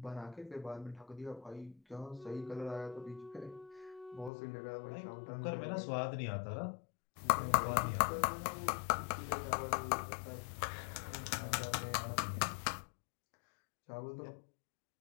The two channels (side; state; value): right; drops out; at 4.3 s